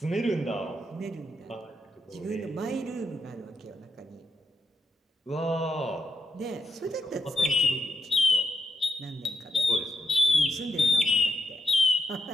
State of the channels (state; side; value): normal; both; correlation 0.83